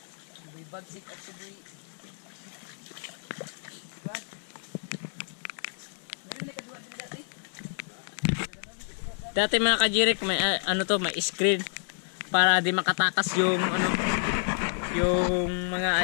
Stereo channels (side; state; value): right; silent; digital silence